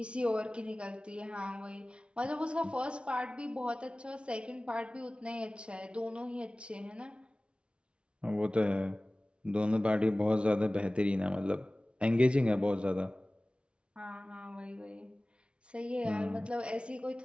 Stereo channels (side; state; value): left; late; 0.058 ms